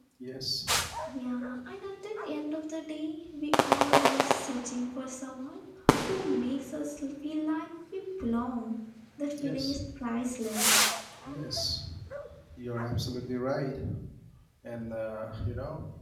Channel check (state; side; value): identical; both; correlation 1.00